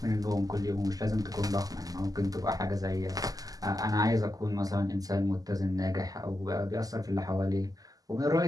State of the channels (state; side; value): late; left; 0.17 ms